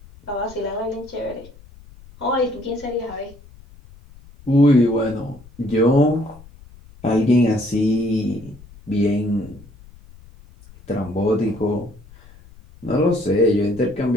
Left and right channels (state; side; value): noise; left; rumble, 22 dB below the sound